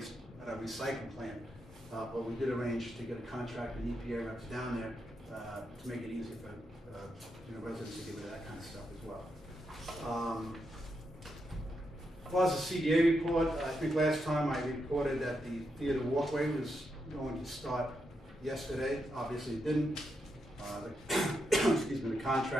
at our recycling plant, but we did arrange to get a contractor and EPA reps down there to make it easier for you know, residents to get rid of that kind of stuff as well. As far as the CDA report, I think last time I reported that the theater walkway was going to start yesterday. Obviously it didn't. Excuse me, the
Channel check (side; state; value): both; normal; correlation 0.83